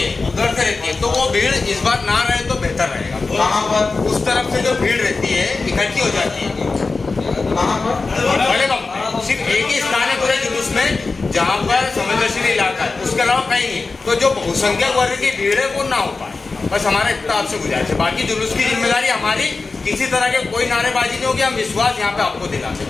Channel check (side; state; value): right; quieter; 4.0 dB